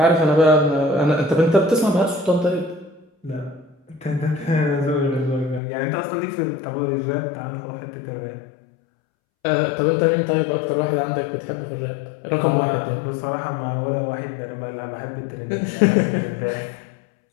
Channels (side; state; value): right; drops out; at 5.6 s